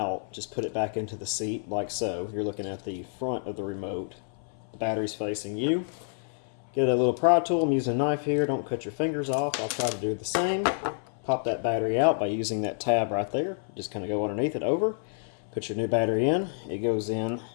Just put it back into the seat like so. You're looking at the front of the remote. The battery's facing you. Get a little pry tool. I'm using a knife here. Don't cut your fingers off. I'll try to do the same. Pop that battery out by using that tab right there. Just kind of go underneath it over. Put your new battery in. It goes in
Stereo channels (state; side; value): silent; right; 59 dB below the other